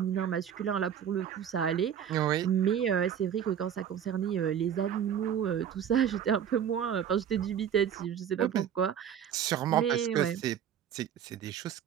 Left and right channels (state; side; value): quieter; left; 9.0 dB